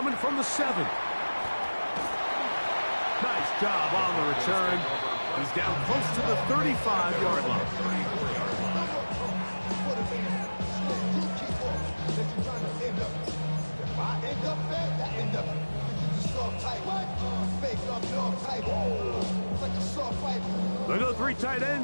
from the 7. Nice job on the return. He's down close to the 35-yard line. They go 3 tight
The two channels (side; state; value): both; inverted; correlation -1.00